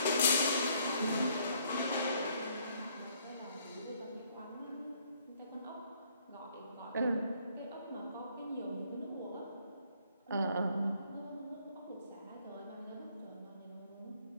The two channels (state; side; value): inverted; both; correlation -0.65